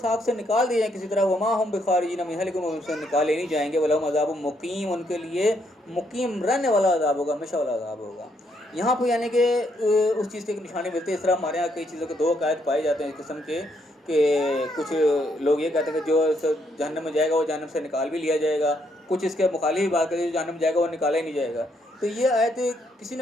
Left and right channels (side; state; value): both; normal; correlation 0.74